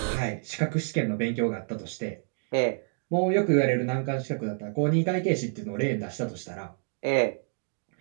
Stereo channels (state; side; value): silent; left; 59 dB below the other